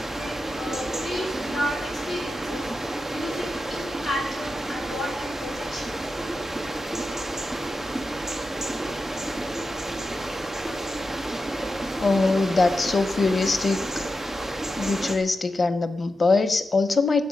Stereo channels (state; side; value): normal; both; correlation 0.90